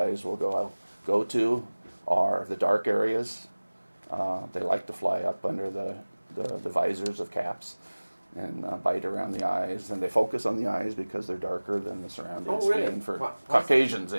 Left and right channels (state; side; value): inverted; both; correlation -1.00